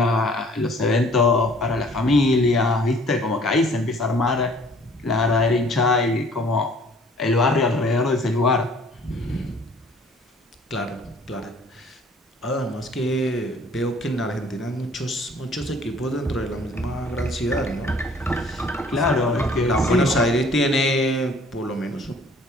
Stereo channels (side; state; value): both; normal; correlation 0.55